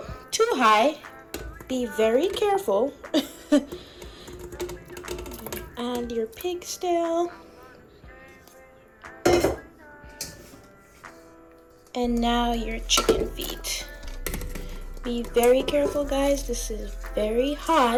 too high. Be very careful. Add your pig's tail. And now your chicken feet. Be very careful, guys. This is very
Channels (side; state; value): both; identical; correlation 1.00